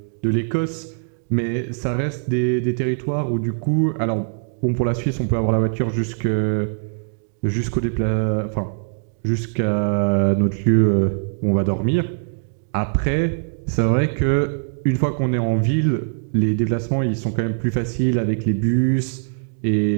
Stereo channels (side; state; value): left; silent; digital silence